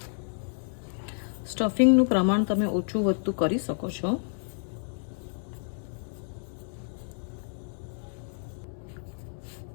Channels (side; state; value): right; silent; 58 dB below the other